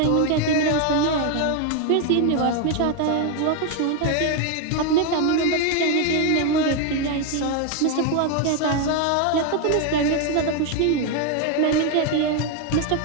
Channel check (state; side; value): different; both; correlation 0.01